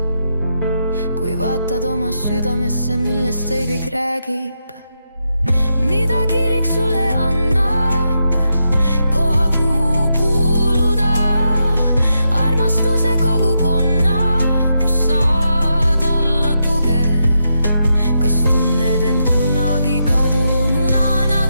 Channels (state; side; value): inverted; both; correlation -0.83